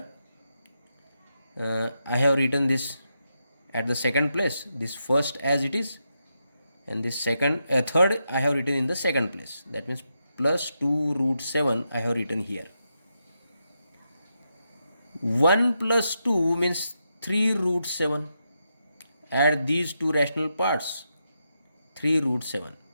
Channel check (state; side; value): inverted; both; correlation -0.84